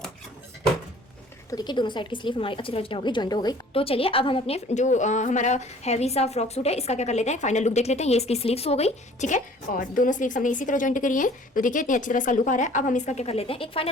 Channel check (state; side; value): normal; both; correlation 0.52